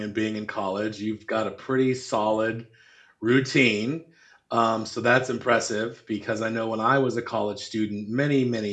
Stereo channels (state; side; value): identical; both; correlation 1.00